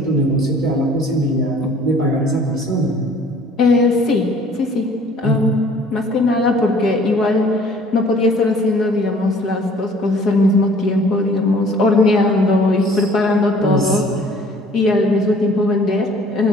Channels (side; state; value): both; normal; correlation 0.54